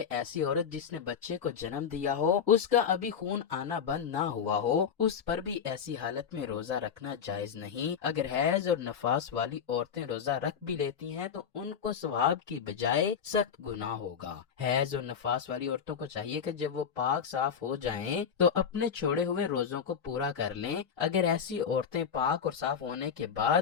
ایسی عورت جس نے بچے کو جنم دیا ہو، اس کا ابھی خون آنا بند نہ ہوا ہو، اس پر بھی ایسی حالت میں روزہ رکھنا جائز نہیں۔ اگر حیض اور نفاس والی عورتیں روزہ رکھ بھی لیتی ہیں تو ان کو ثواب کی بجائے سخت گناہ ہوگا۔ حیض اور نفاس والی عورتوں کو چاہیے کہ جب وہ پاک صاف ہو جائیں تو اپنے چھوڑے ہوئے روزوں کو پورا کر لیں۔ اگر ایسی عورتیں پاک اور صاف ہونے کے بعد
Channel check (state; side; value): quieter; right; 7.2 dB